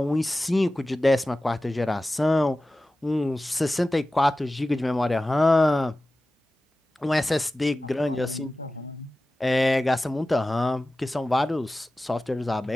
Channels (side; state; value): both; normal; correlation 0.96